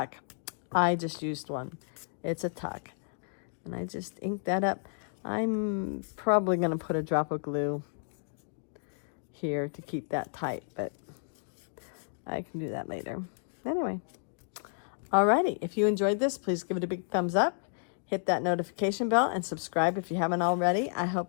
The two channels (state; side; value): silent; right; digital silence